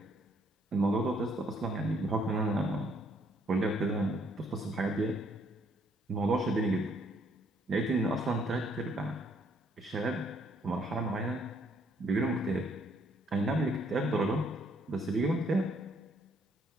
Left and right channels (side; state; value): both; normal; correlation 0.67